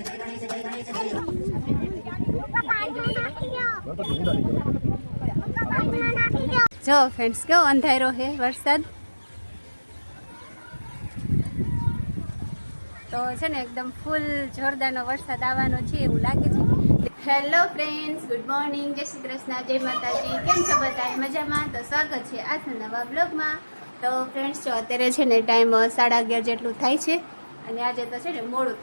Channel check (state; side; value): inverted; both; correlation -1.00